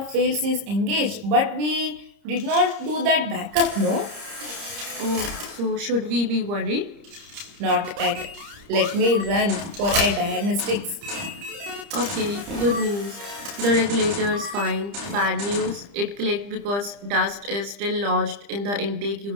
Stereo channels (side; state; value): left; late; 30 ms